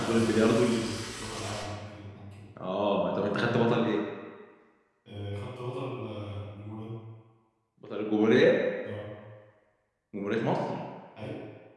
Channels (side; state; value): both; identical; correlation 1.00